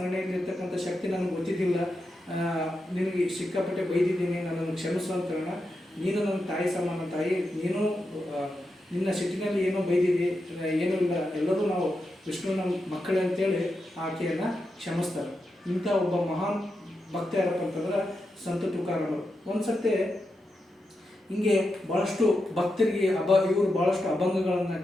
ಶಕ್ತಿ ನನಗೆ ಗೊತ್ತಿದ್ದಿಲ್ಲ, ನಿನಗೆ ಸಿಕ್ಕಾಪಟ್ಟೆ ಬೈದಿದ್ದೀನಿ, ನನ್ನನ್ನು ಕ್ಷಮಿಸು ಅಂತ ಹೇಳೋಣ. ನೀನು ನನ್ನ ತಾಯಿ ಸಮಾನ ತಾಯಿ, ನೀನು ನಿನ್ನ ಸಿಟ್ಟಿನಲ್ಲಿ ಏನೋ ಬೈದಿದ್ದಿ, ಏನೂ ಇಲ್ಲ, ಎಲ್ಲರೂ ನಾವು ವಿಷ್ಣುವಿನ ಮಕ್ಕಳೇ ಅಂತೇಳಿ ಆಕೆಯನ್ನು ಕ್ಷಮಿಸ್ತಾರೆ. ಇಂಥ ಒಬ್ಬ ಮಹಾನ್ ಭಕ್ತ ಯಾರಪ್ಪ ಅಂತಂದ್ರೆ ಸಂತ ತುಕಾರಾಮರು. ಒಂದು ಸರ್ತಿ ಹಿಂಗೆ ಭಾಳಷ್ಟು ಭಕ್ತರಿಗೆ ಇವರು ಭಾಳಷ್ಟು ಅಭಂಗಗಳನ್ನು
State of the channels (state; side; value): normal; both; correlation 0.87